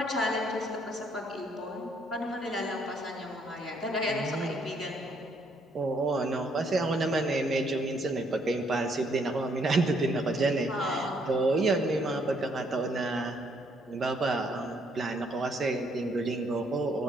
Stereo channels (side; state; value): both; normal; correlation 0.69